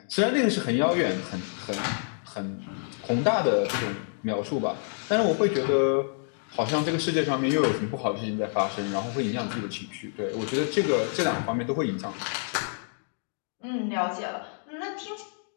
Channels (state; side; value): silent; right; digital silence